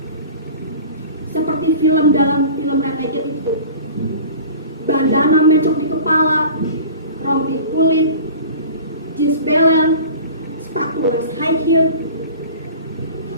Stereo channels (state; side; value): inverted; both; correlation -0.41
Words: Seperti film dalam film Renegade itu. Bandana mencok di kepala, rompi kulit, jeans belel, sepatu les high heel,